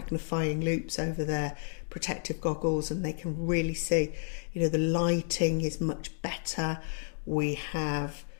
loupes over their protective goggles, and they can really see, you know, the lighting is much better. We have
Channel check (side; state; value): right; silent; digital silence